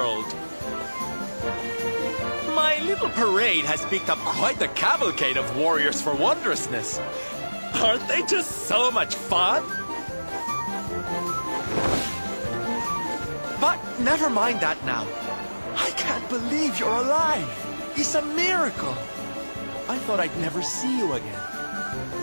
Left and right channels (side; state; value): both; inverted; correlation -1.00